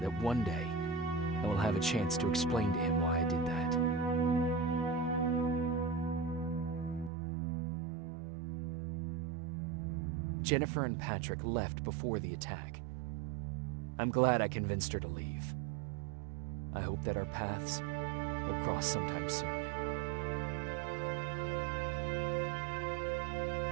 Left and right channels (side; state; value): left; drops out; at 7.1 s